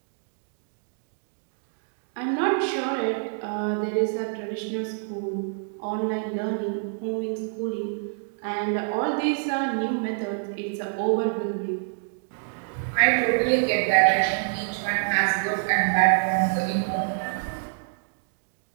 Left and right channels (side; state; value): left; silent; digital silence